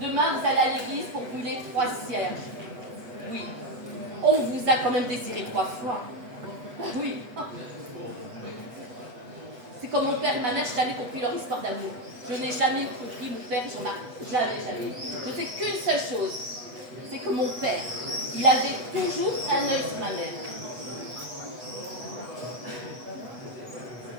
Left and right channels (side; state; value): left; late; 8.0 ms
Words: Demain vous allez à l'église pour brûler 3 cierges. Oui, on vous a quand même désiré 3 fois. Oui. C'est comme mon père et ma mère, je n'ai jamais compris leur histoire d'amour. Je n'ai jamais compris mon père, j'en ai jamais. Je sais qu'une seule chose, c'est que mon père, il avait toujours un œil sur ma mère.